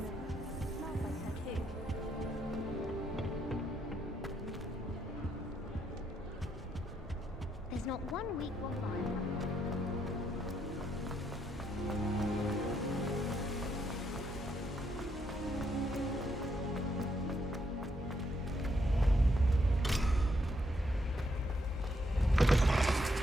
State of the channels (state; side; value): normal; both; correlation 0.77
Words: Smells like her too. There's not one week gone by.